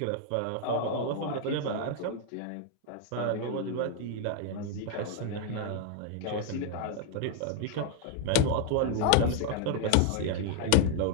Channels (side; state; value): both; different; correlation 0.00